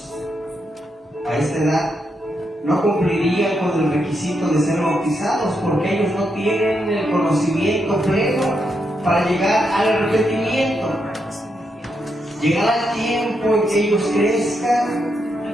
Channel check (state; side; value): normal; both; correlation 0.81